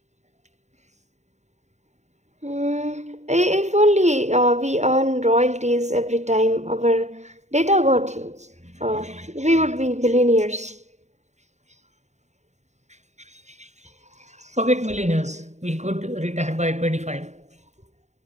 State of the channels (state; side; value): late; left; 0.34 ms